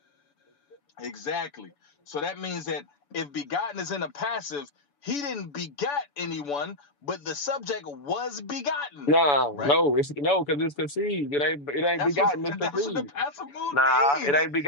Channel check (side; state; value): right; late; 7.0 ms